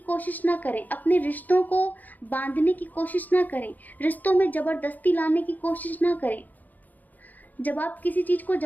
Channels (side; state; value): right; late; 0.082 ms